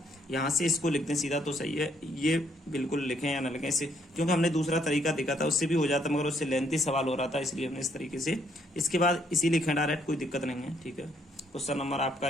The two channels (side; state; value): both; normal; correlation 0.70